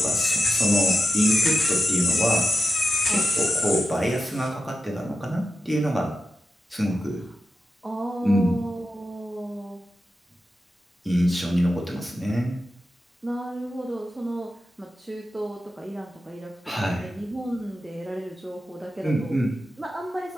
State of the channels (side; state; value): both; normal; correlation 0.90